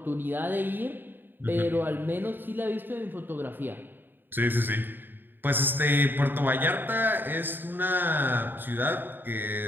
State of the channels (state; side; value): late; left; 0.094 ms